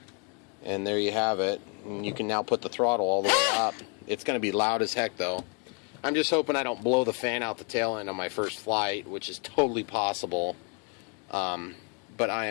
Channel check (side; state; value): right; quieter; 35.0 dB